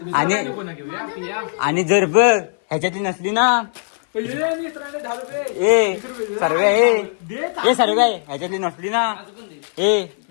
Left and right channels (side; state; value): right; silent; 60 dB below the other